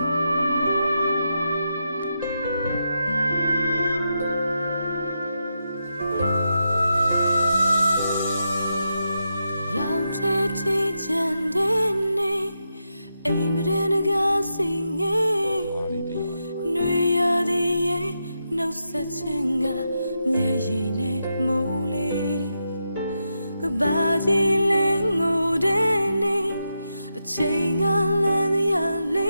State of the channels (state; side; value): inverted; both; correlation -0.86